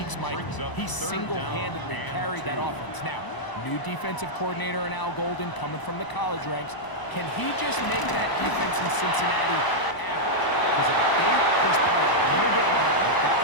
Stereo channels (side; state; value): right; late; 1.0 ms